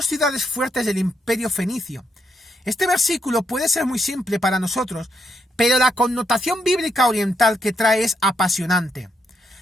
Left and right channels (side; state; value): both; normal; correlation 0.78